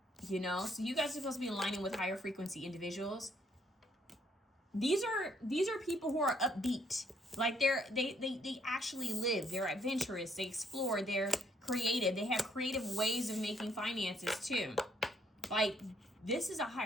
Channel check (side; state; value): both; normal; correlation 0.69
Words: You know? So you guys are supposed to be aligning with higher frequency individuals. These are people who are upbeat. Like they actually live. They're adventurous. They explore. They're creative. They have creative ways of making finances too. Like this is a